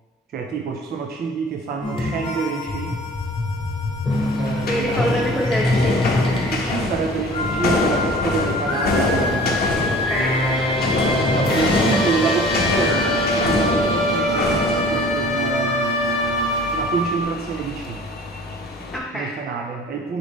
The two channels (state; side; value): normal; both; correlation 0.46